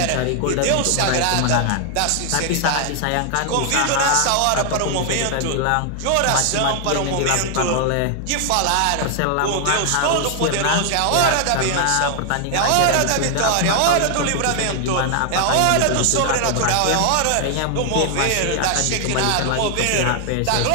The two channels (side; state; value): both; different; correlation 0.00